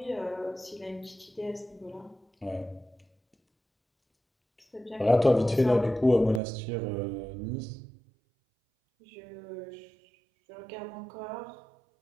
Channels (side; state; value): left; drops out; at 6.4 s